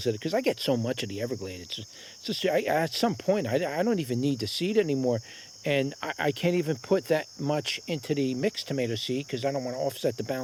at it because I get so much of the Everglade. It's just at some point, I don't even need the seed anymore. And I can't even put that much into the mixed tomato seed because I don't want to offset the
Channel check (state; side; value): identical; both; correlation 1.00